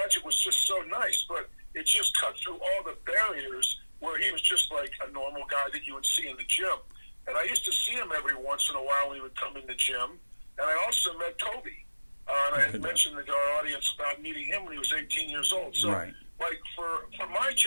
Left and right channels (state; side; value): inverted; both; correlation -1.00